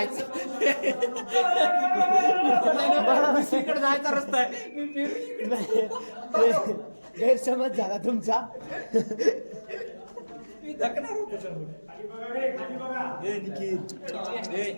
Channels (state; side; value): inverted; both; correlation -1.00